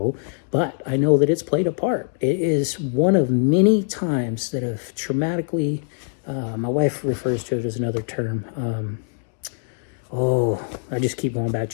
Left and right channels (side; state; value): right; silent; digital silence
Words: But I know that it's played a part. It is one of many times that have traumatically, my wife refers to it as another term. I just keep going back